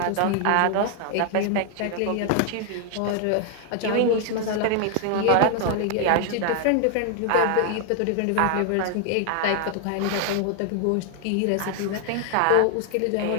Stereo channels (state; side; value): different; both; correlation 0.00